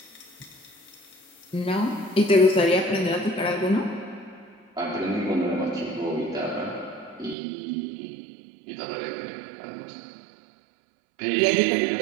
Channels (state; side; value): drops out; left; at 7.4 s